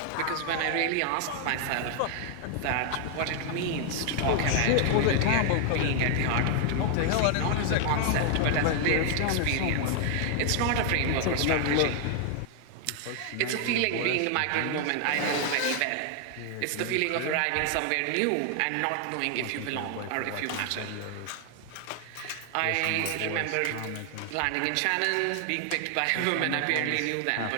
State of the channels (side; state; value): both; different; correlation 0.00